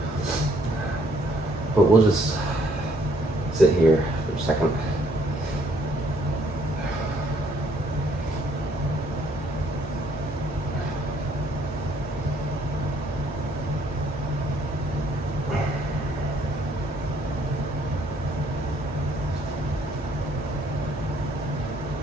But we'll just sit here for a second.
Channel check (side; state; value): both; normal; correlation 0.66